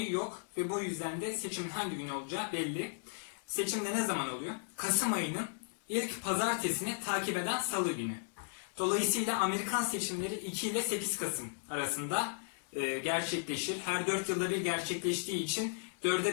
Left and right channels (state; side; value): silent; right; digital silence